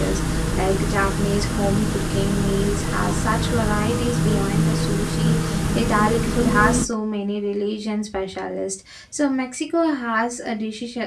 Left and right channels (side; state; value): both; identical; correlation 1.00